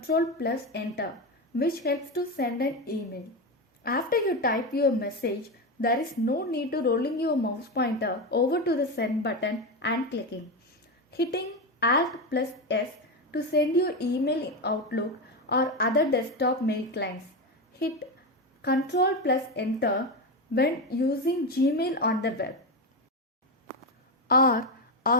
plus Enter, which helps to send an email. After you type your message, there is no need to rolling your mouse pointer over to the send button and clicking. Hitting Alt plus S to send your email in Outlook or other desktop mail clients. Hit Ctrl plus Enter when using Gmail on the web. R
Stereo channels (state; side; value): normal; both; correlation 0.15